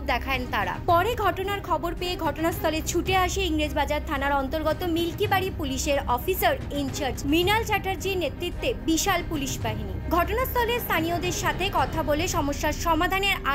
দেখান তারা। পরে ঘটনার খবর পেয়ে ঘটনাস্থলে ছুটে আসে ইংরেজবাজার থানার অন্তর্গত মিল্কিবাড়ি পুলিশের অফিসার ইনচার্জ মৃণাল চ্যাটার্জির নেতৃত্বে বিশাল পুলিশ বাহিনী। ঘটনাস্থলে স্থানীয়দের সাথে কথা বলে সমস্যার সমাধানের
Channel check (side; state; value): both; identical; correlation 1.00